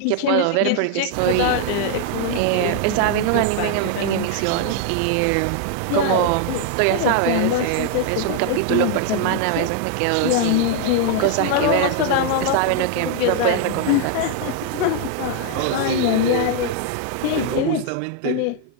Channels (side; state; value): both; different; correlation 0.00